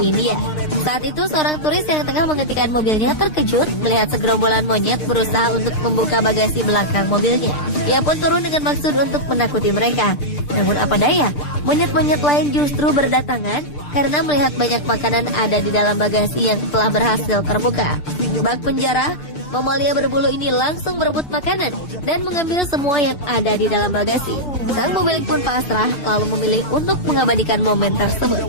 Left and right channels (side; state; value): right; late; 6.7 ms